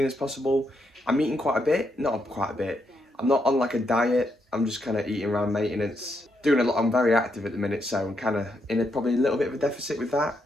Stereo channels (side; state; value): both; normal; correlation 0.79